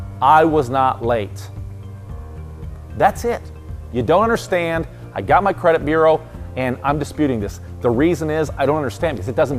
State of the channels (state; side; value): identical; both; correlation 1.00